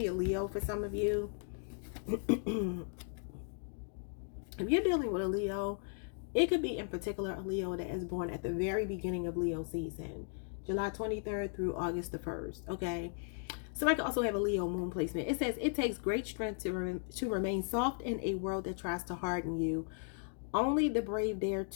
a Leo for some of you. If you're dealing with a Leo, it could be in particular a Leo that is born at the very beginning of Leo season, July 23rd through August the 1st. Okay. Somebody could also have a Leo moon placement. It says it takes great strength to remain soft in a world that tries to harden you. Only the brave dare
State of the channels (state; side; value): silent; right; 54 dB below the other